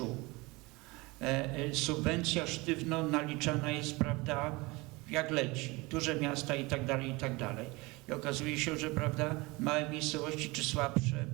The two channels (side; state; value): left; quieter; 23.9 dB